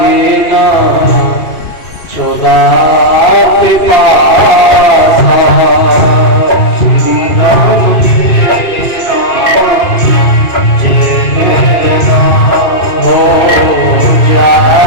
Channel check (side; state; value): right; late; 2.5 ms